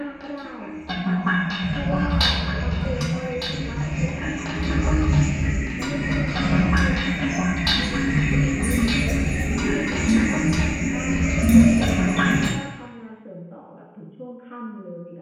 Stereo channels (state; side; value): identical; both; correlation 1.00